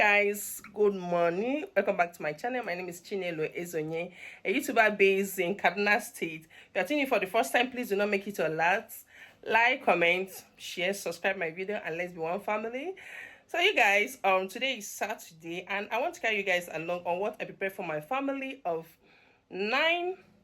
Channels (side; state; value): both; identical; correlation 1.00